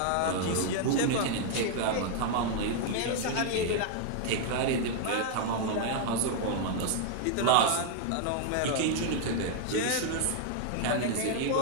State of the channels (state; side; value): different; both; correlation 0.00